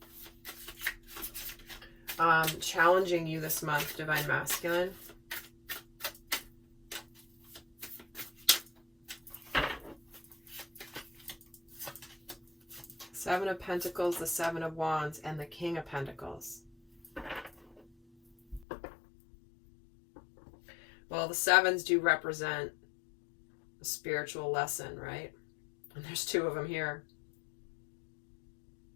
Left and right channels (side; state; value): right; drops out; at 18.7 s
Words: challenging you this month, Divine Masculine. Seven of Pentacles, the Seven of Wands, and the King of Pentacles. Well, the sevens do represent a spiritual lesson, right? And there's two of them here.